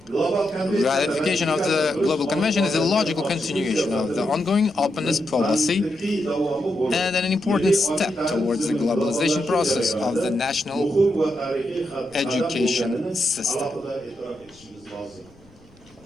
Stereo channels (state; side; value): noise; left; rumble, 28 dB below the sound